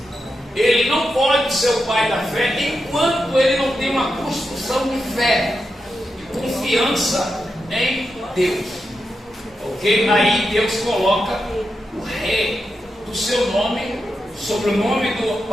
Ele não pode ser o pai da fé enquanto ele não tem uma construção de fé e confiança em Deus. Ok? Aí Deus coloca o rei do seu nome sobre o nome do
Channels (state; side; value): normal; both; correlation 0.87